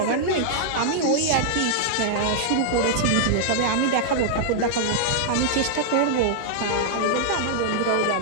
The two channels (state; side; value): different; both; correlation -0.01